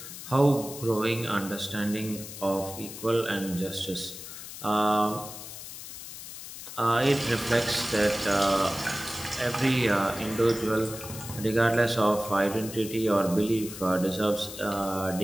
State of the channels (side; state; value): left; noise; hiss, 11 dB below the sound